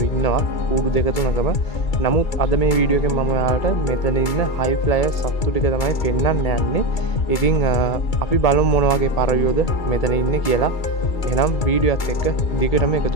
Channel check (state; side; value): late; right; 2.3 ms